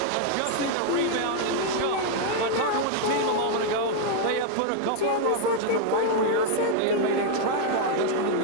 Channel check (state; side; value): different; both; correlation 0.00